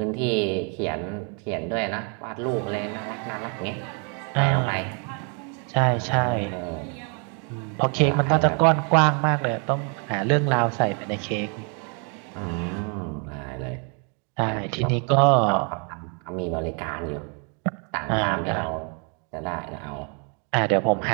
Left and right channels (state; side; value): quieter; left; 37.6 dB